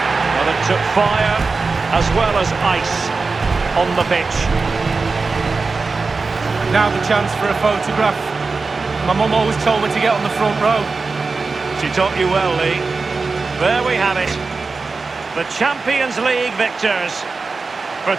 Well, it took fire as well as ice on the pitch. Now the chance for a photograph. My mum always told me to get on the front row. She taught you well, Lee. There we have it. The Champions League victors for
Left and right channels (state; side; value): quieter; left; 4.2 dB